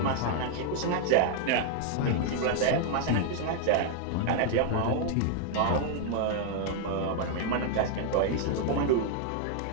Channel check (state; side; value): different; both; correlation 0.00